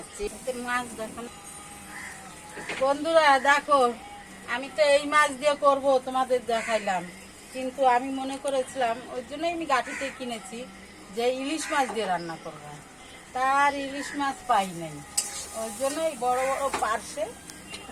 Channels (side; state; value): both; identical; correlation 1.00